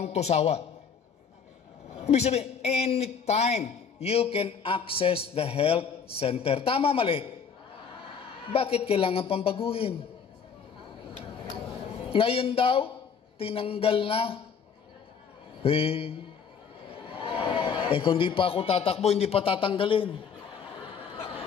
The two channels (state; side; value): quieter; right; 6.5 dB